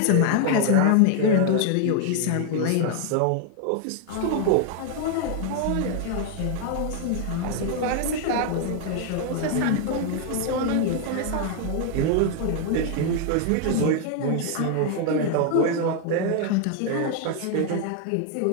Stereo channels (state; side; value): different; both; correlation 0.00